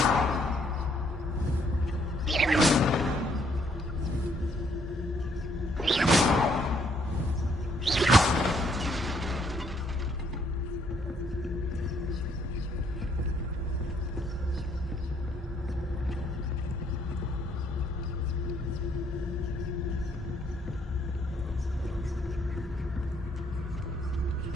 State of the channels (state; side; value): normal; both; correlation 0.68